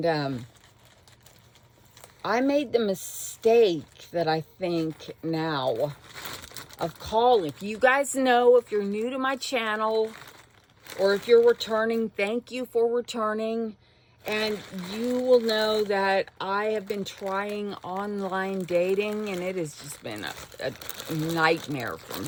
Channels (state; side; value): identical; both; correlation 1.00